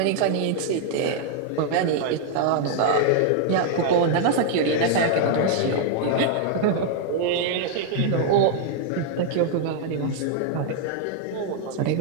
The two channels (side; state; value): both; different; correlation 0.00